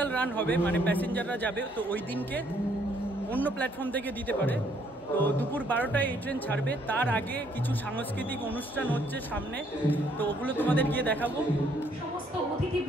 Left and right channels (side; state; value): both; normal; correlation 0.67